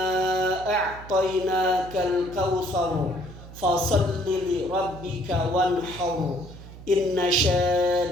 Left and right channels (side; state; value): right; noise; hum, 16 dB below the sound